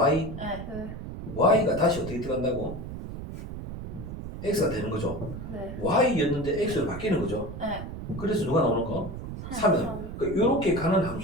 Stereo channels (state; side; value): noise; right; rumble, 9 dB below the sound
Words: 네. 네. Y가 다시 어떻게 들어간다고? X가 되는 거죠. 네. Y였는데 X로 바뀌는 거죠. 네. 그래서 누가 나오는 거? 3은. 이렇게 가는